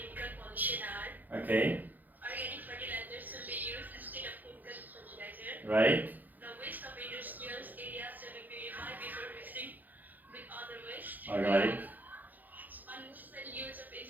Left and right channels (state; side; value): late; left; 0.084 ms